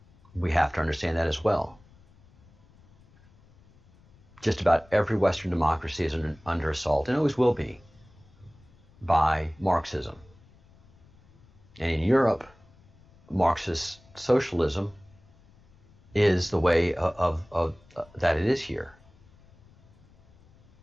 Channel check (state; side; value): noise; left; rumble, 28 dB below the sound